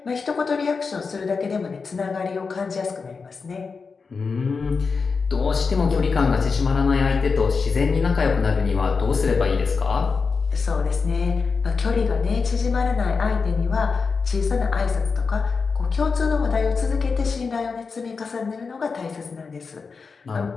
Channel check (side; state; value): right; quieter; 4.9 dB